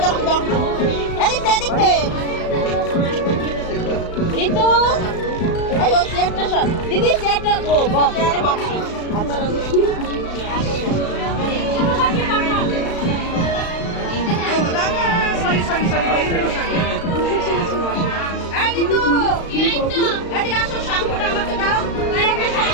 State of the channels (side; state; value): right; late; 35 ms